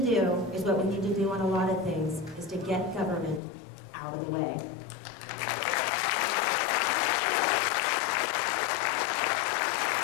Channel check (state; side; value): drops out; right; at 3.4 s